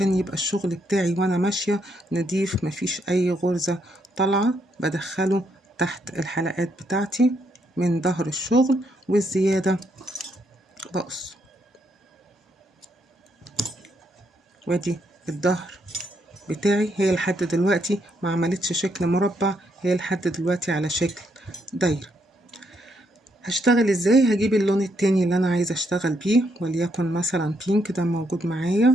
يبقى الشغل بتاعي وانا ماشية نضيف، مفيش اي غرزة طالعة. بدخله تحت الحلقات بتاعتي من ظهر الشغل، والزيادة بقص. وادي الظهر بتاعي، هي لحد دلوقتي ما عملتش شكل مربع، هي لحد دلوقتي على شكل دايرة. هشتغل ازاي؟ هجيب اللون التاني اللي انا عايزه اشتغل بيه، وليكن مثلا بينك، ده موجود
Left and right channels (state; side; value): normal; both; correlation 0.75